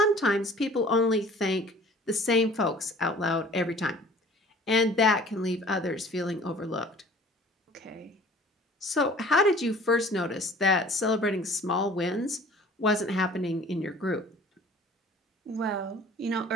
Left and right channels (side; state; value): both; normal; correlation 0.49